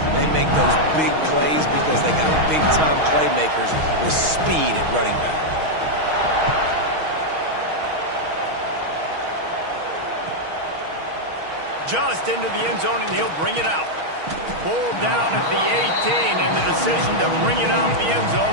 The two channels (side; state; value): left; late; 6.3 ms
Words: they make those big plays because they got big-time playmakers with speed at running back. Just into the end zone, and he'll bring it out. Pulled down at the 18, and the decision to bring it out of the end zone